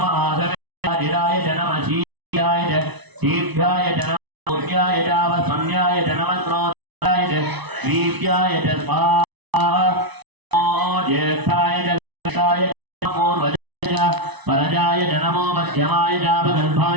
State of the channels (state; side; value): late; left; 1.0 ms